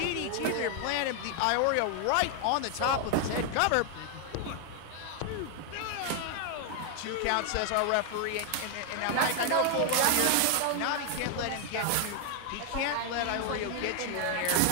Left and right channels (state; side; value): different; both; correlation 0.00